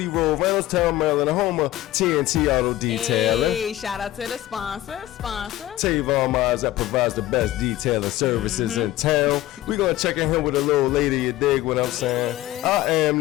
Road, Reynoldstown, Maryland, the home of TNT Auto Detailing. Hey, shout out to the sponsor. Tavon Miles that provides the best detailing services in town. We're going to check in here with a little lady, you dig what I'm saying? Yeah. I am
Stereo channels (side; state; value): right; quieter; 15.3 dB